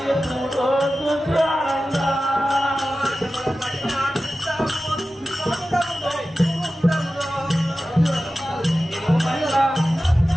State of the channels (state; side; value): normal; both; correlation 0.94